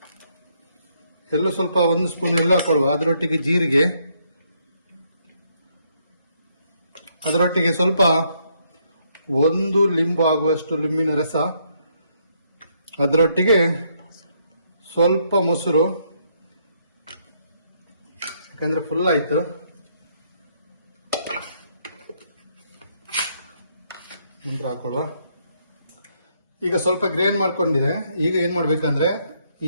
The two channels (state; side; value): inverted; both; correlation -0.72